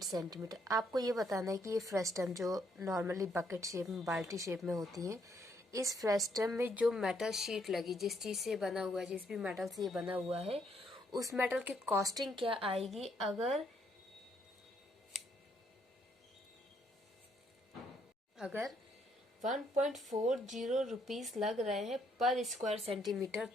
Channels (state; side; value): normal; both; correlation 0.71